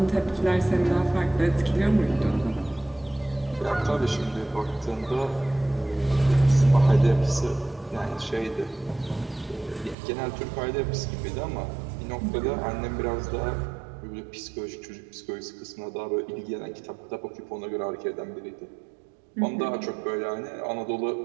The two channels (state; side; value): drops out; left; at 10.0 s